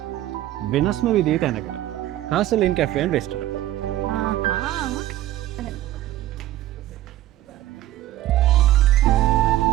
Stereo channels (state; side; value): quieter; left; 14.2 dB